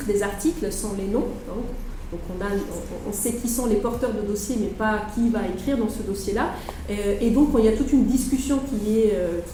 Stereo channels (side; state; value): both; identical; correlation 1.00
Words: des articles sans les noms. Hein. Donc on sait qui sont les porteurs de dossiers, mais pas qui va écrire dans ce dossier-là. Et donc il y a toute une discussion qui